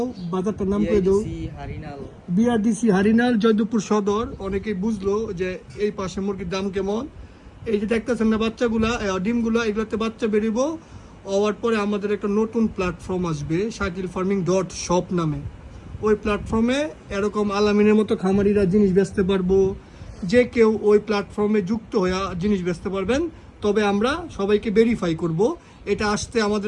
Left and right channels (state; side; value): identical; both; correlation 1.00